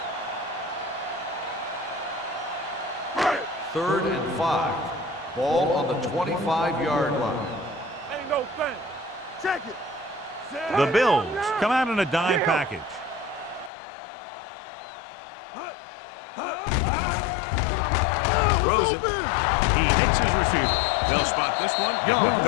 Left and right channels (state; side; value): drops out; right; at 13.7 s